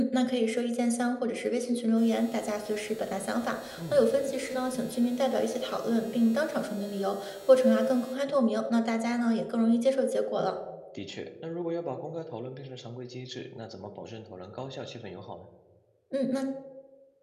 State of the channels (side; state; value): both; identical; correlation 1.00